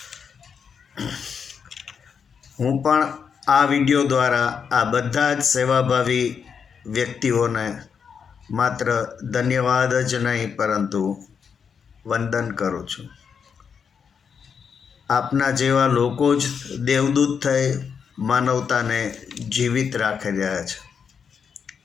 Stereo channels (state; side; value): quieter; right; 6.6 dB